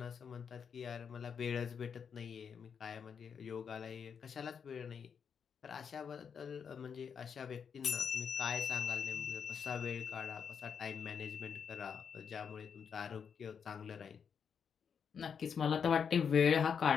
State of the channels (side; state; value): right; quieter; 6.9 dB